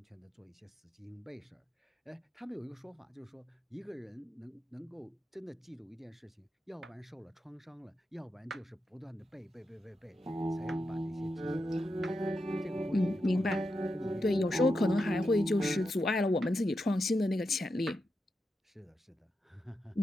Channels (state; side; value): normal; both; correlation 0.87